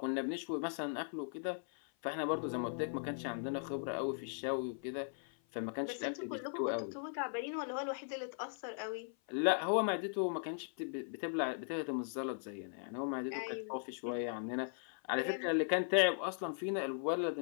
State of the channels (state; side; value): silent; right; 52 dB below the other